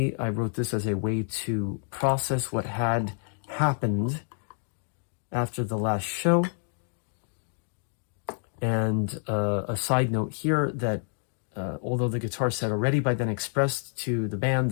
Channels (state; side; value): silent; right; 56 dB below the other